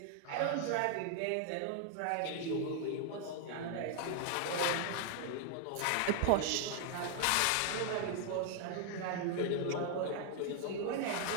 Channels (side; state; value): both; different; correlation 0.00